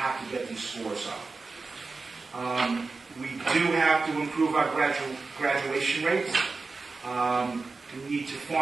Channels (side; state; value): left; quieter; 4.0 dB